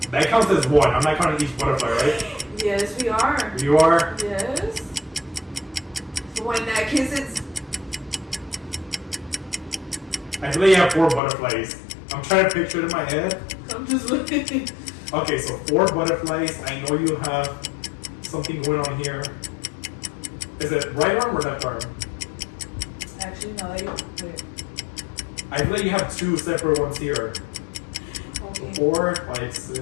That counts as one. I'm not counting each butterfly, right? Yes, we are. You are? Yes. So in that case, it's. I feel like you have 4 butterflies. I'm trying to picture it in my head. I'm just looking. Okay, so 4 butterflies. I know you have something going on here. Is it right arm or left arm? Actually, no. Wait. I feel like you have 2 separate ones here. Okay. 4, 5,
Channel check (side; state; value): right; drops out; at 11.2 s